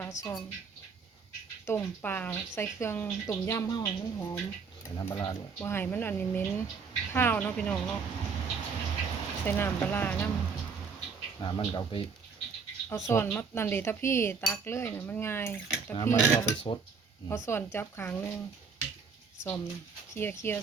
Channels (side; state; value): left; quieter; 5.4 dB